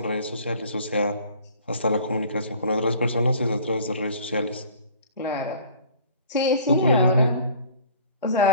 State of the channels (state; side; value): inverted; both; correlation -0.49